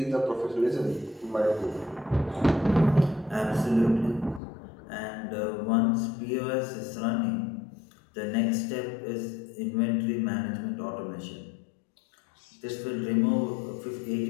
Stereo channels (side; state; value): right; drops out; at 4.4 s